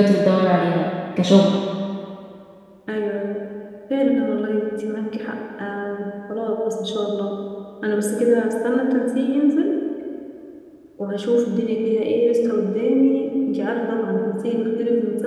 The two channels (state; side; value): identical; both; correlation 1.00